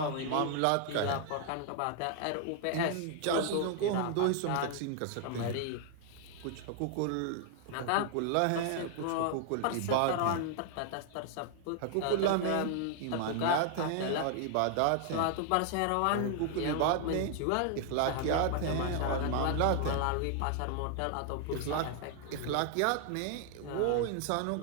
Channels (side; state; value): both; different; correlation 0.00